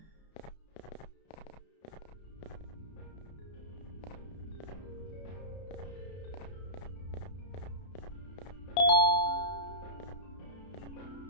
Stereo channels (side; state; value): right; late; 32 ms